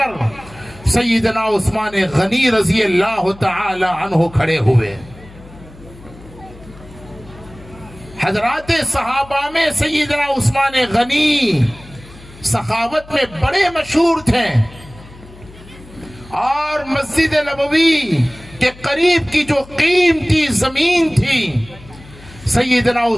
سیدنا عثمان غنی رضی اللہ تعالی عنہ کھڑے ہوئے۔ حضرات صحابہ میں سیدنا عثمان غنی سخاوت میں بڑے مشہور تھے، اور مسجد نبوی کے قریب کی جو قیمتی زمین تھی سیدنا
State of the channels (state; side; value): noise; left; hum, 21 dB below the sound